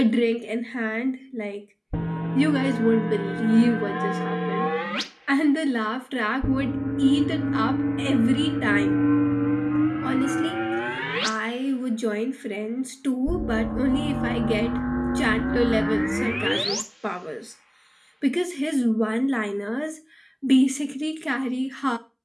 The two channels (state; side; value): identical; both; correlation 1.00